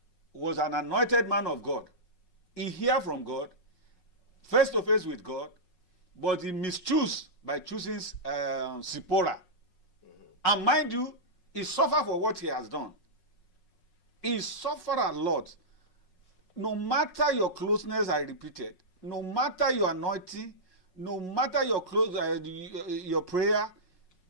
was an anointed man of God. He heard from God, face to face with God, but he mischools by choosing Zipporah. And mind you, he suffered for what he has done. He suffered a lot. No matter your closeness, I repeat it, no matter your anointing, no matter your your prayer,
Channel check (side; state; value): right; late; 5.5 ms